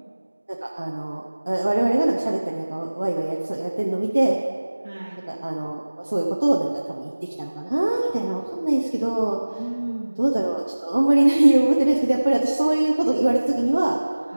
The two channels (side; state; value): both; inverted; correlation -1.00